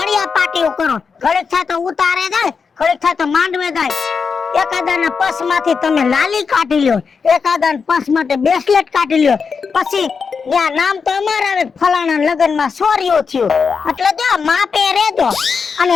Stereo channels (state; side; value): quieter; right; 5.5 dB